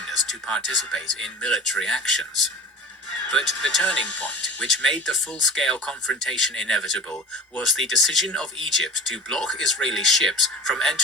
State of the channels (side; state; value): both; normal; correlation 0.38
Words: to participate in military actions. But the turning point, which made the full-scale confrontation inevitable, was the decision of Egypt to block Israeli ships from